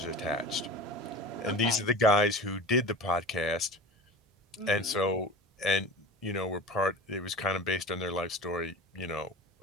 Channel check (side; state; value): both; normal; correlation 0.34